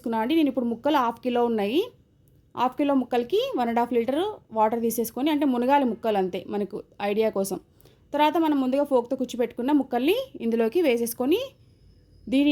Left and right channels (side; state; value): both; identical; correlation 1.00